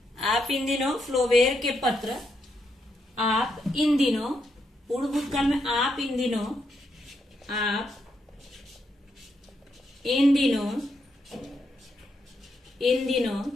आप इन दिनों फ्लोवेयर के पत्र, आप इन दिनों, पूर्ण भूतकाल में आप इन दिनों, आप इन दिनों, इन दिनों,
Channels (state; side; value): normal; both; correlation 0.80